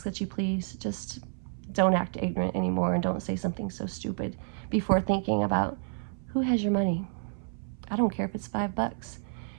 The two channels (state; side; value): silent; left; 58 dB below the other